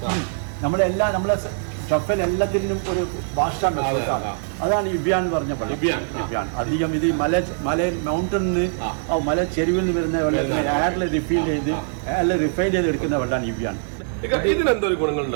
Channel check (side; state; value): left; silent; digital silence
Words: നമ്മളെല്ലാം നമ്മളെ ഷഫൽ എല്ലാത്തിനും ഒരു ഭാഷാണ്. അതാണ് ഇബിയാൻ എന്ന് പറഞ്ഞ വെള്ളം. ഇബിയാൻ അധികം ഇത് മല മൗണ്ടനിന്ന് മല ചെരുവിൽ നിന്ന് വരുന്ന വെള്ളത്തിന് എയറിൽ റിഫൈൻ ചെയ്ത് എടുക്കുന്ന വെള്ളമാണ് ഇബിയാൻ. ഇതിനെന്തൊരു